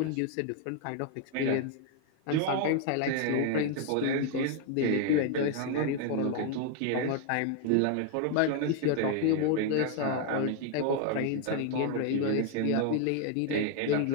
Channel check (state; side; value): different; both; correlation 0.00